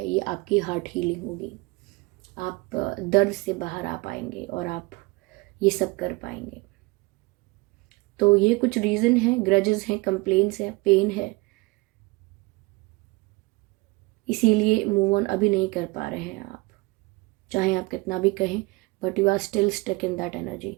ये आपकी हार्ट हीलिंग होगी। आप दर्द से बाहर आ पाएंगे और आप ये सब कर पाएंगे। तो ये कुछ रीज़न है, ग्रजेस हैं, कंप्लेंट्स है, पेन है, इसीलिए मूव ऑन अभी नहीं कर पा रहे हैं आप, चाहे आप कितना भी कहें, but you are still stuck in that energy.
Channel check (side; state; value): left; quieter; 24.5 dB